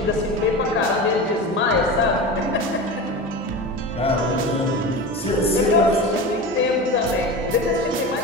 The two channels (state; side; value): normal; both; correlation 0.28